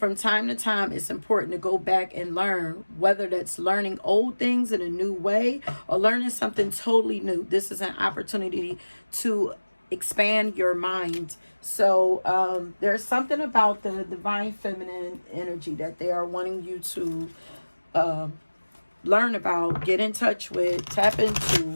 time to time, it's important to go back and learn, whether that's learning old things in a new way or learning something totally new. This is an opportunity to expand your mind. So there's something about the divine feminine energy that they are wanting you to learn about, get in touch with, tap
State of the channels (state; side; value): inverted; both; correlation -1.00